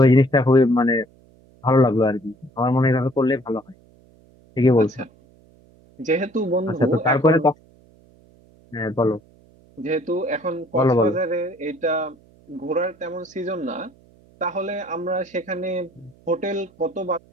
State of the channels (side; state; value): right; noise; hum, 29 dB below the sound